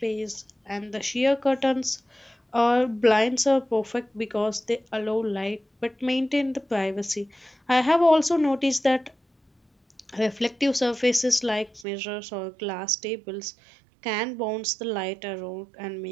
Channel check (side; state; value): left; drops out; at 11.9 s